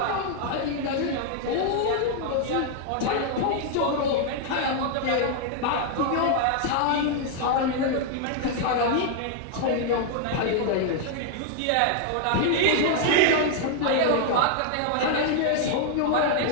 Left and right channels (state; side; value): different; both; correlation 0.00